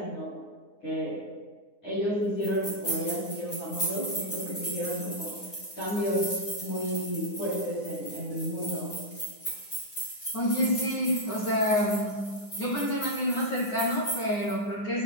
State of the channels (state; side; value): late; right; 9.7 ms